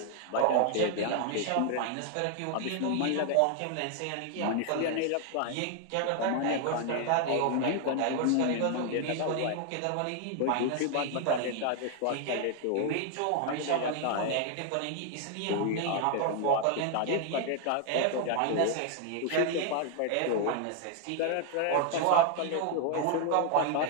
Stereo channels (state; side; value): different; both; correlation 0.00